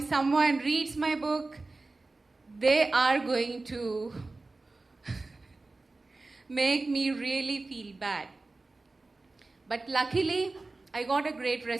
someone reads my book, they are going to make me really feel bad. But luckily, I got a great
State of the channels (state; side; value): quieter; left; 3.4 dB